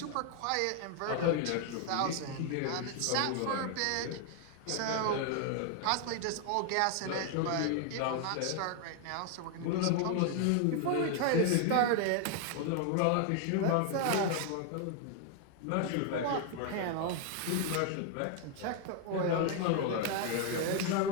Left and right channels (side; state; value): both; different; correlation 0.00